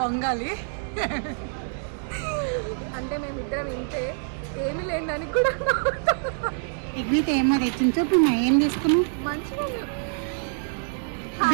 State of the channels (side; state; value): left; silent; digital silence